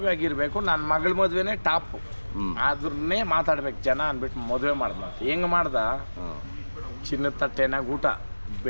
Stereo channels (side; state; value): both; inverted; correlation -1.00